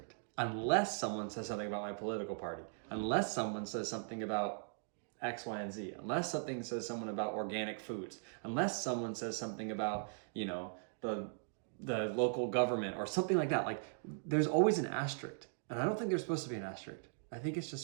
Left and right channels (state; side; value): silent; left; digital silence